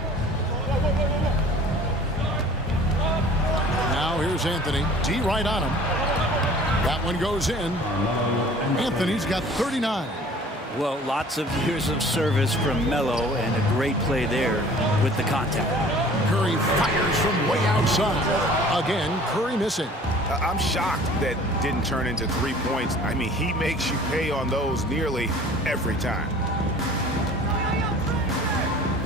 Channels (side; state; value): both; normal; correlation 0.48